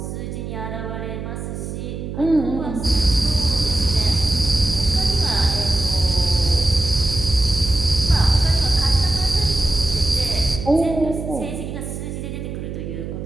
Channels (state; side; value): noise; right; hum, 7 dB below the sound